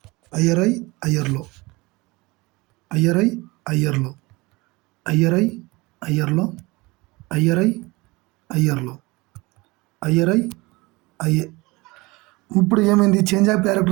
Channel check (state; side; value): quieter; left; 23.5 dB